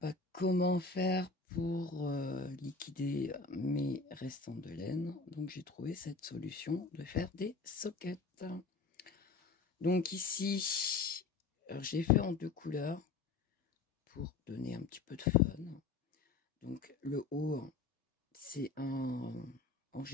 comment faire pour liquider mes restants de laine. Donc j'ai trouvé cette solution de faire des soquettes. Donc ici, j'ai fait en 2 couleurs pour donner un petit peu de fun. Donc le haut, c'est en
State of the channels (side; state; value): right; quieter; 4.3 dB